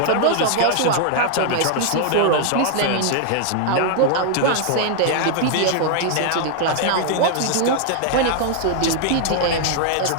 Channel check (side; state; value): both; different; correlation 0.00